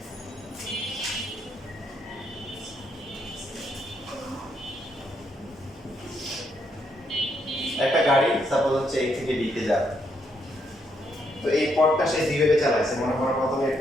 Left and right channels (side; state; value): both; normal; correlation 0.76